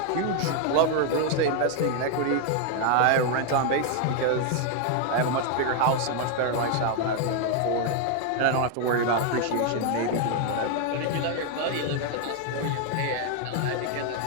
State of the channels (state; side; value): different; both; correlation 0.01